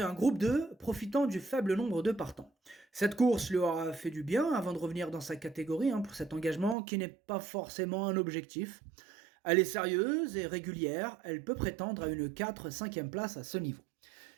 un groupe 2, profitant du faible nombre de partants. Cette course lui aura fait du bien avant de revenir dans sa catégorie pour cet engagement qui n'est pas forcément un objectif. Elle est sérieuse et régulière, elle peut prétendre à une 4-5e place à ce niveau.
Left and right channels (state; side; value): drops out; left; at 6.8 s